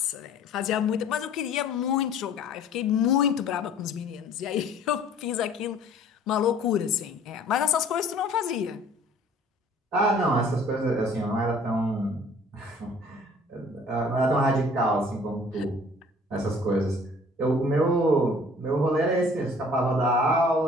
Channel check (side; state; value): both; normal; correlation 0.52